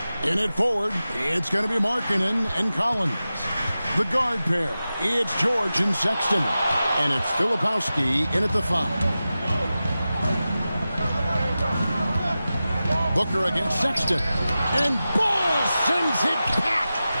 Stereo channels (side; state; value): both; inverted; correlation -0.94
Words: In it forward, it's going to be Markkanen and Collins. The guard pair, it's George and Sexton. And it's Filipowski in at the 5. Booker against Sexton. And Ball sends it back.